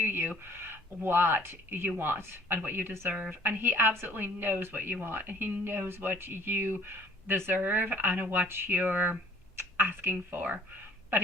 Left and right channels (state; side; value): normal; both; correlation 0.56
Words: what you want and what you deserve. And he absolutely knows what you want. And he knows what you deserve and what you're asking for. But